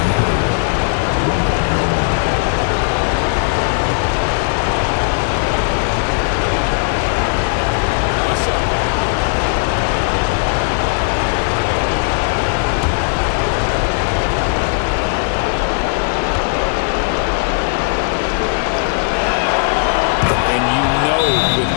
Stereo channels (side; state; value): right; silent; digital silence